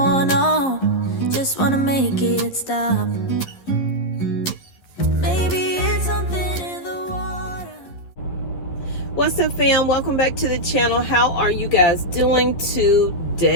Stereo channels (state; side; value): late; right; 11 ms